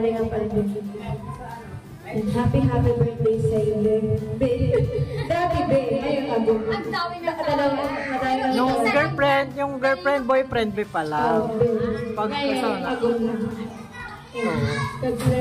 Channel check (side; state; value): both; identical; correlation 1.00